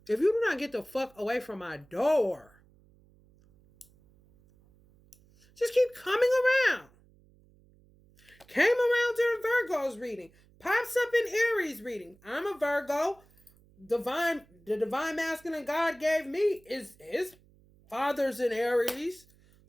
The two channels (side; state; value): right; noise; hum, 29 dB below the sound